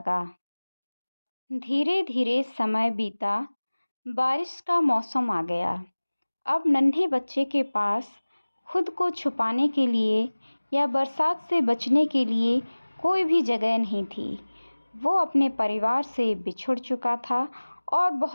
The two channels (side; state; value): both; inverted; correlation -1.00